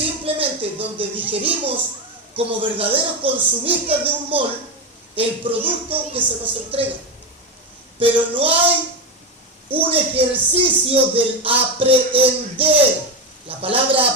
donde digerimos como verdaderos consumistas de un mall el producto que se nos entrega. Pero no hay un ejercicio del aprehender. La palabra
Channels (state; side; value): normal; both; correlation 0.14